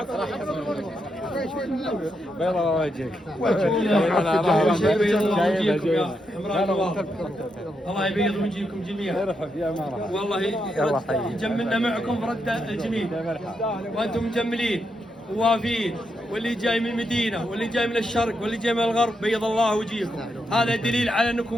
بيضة وجهك الله يبيض وجهكم جميعا. يا مرحبا والله جملنا معكم فرد الجميل، وانتم مجملين ووافين، واللي جاي من المدينه واللي جاي من الشرق واللي جاي من الغرب بيض الله وجهكم، هذا دليل على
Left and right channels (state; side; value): normal; both; correlation 0.82